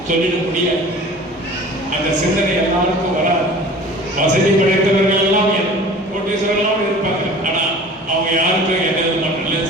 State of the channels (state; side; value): normal; both; correlation 0.42